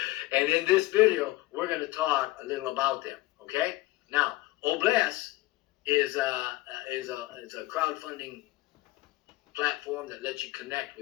And in this video, we're going to talk a little about them, okay? Now, O-Bless is a crowdfunding platform that lets you connect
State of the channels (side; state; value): right; quieter; 18.9 dB